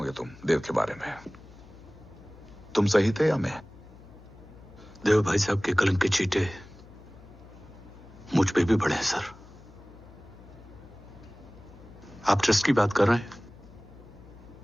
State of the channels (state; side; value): noise; left; hum, 21 dB below the sound